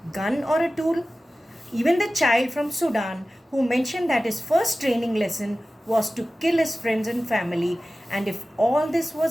gun or a tool. Even the child from Sudan who mentioned that his first training lesson was to kill his friends and family, and if all this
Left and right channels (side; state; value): both; normal; correlation 0.96